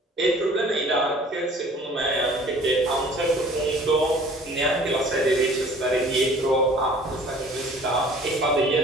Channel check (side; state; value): both; normal; correlation 0.51